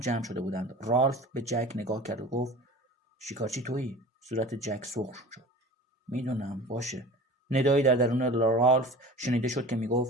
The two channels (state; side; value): normal; both; correlation 0.38